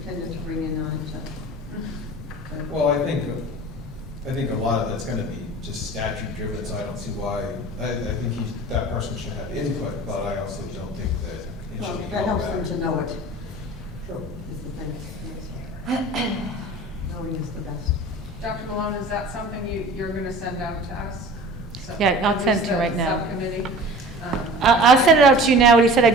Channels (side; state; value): both; normal; correlation 0.41